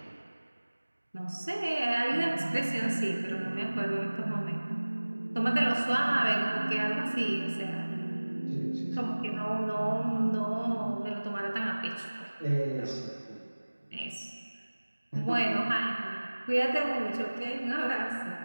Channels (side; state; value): both; inverted; correlation -1.00